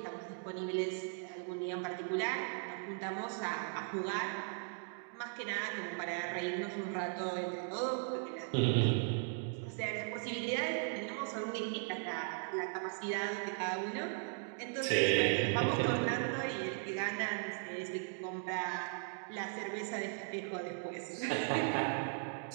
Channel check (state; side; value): silent; left; 52 dB below the other